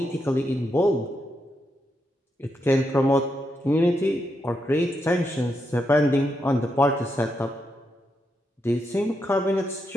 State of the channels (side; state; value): both; normal; correlation 0.83